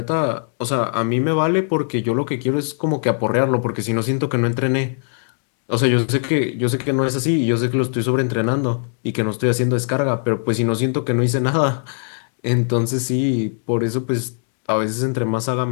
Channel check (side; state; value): right; silent; 65 dB below the other